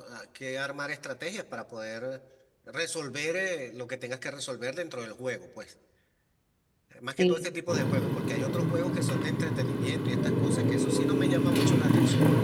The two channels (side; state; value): both; identical; correlation 1.00